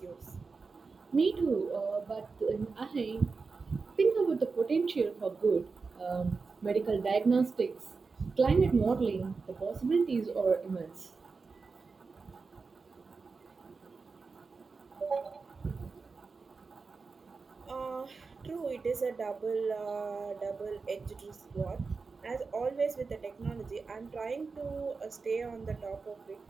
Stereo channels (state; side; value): quieter; left; 4.5 dB